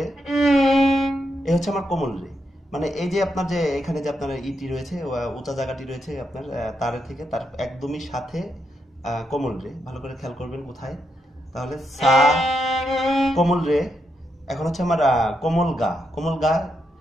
এই হচ্ছে আমার কোমল রে। মানে এই যে আপনার যে এখানে যে আপনার ইটি রয়েছে, উঁচা জায়গাটি রয়েছে আপনার তারের থেকে, তার একদমই সাথে কোমল রে। ভালো করে খেয়াল করবেন কোথায়। তাহলে সা কোমল রে, এখন হচ্ছে আমার কোমল গা। কোমল গা,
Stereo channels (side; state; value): both; normal; correlation 0.82